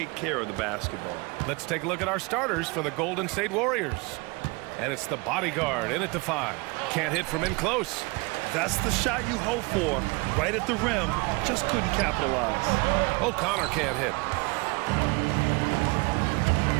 care of the basketball. Let's take a look at our starters for the Golden State Warriors. And it's the bodyguard in at the 5. Can't hit from in close. That's the shot you hope for, right at the rim. Just couldn't capitalize. O'Connor can't hit.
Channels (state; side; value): quieter; left; 27.1 dB